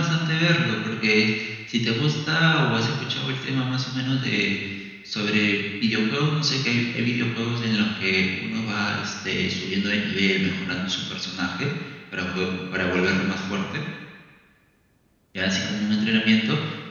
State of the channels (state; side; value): identical; both; correlation 1.00